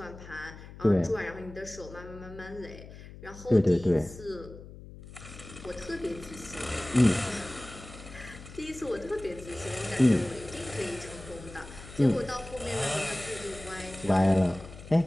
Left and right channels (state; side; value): noise; left; hum, 15 dB below the sound